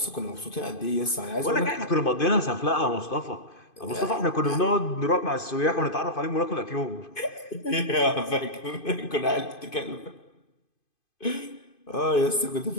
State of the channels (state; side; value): late; right; 2.5 ms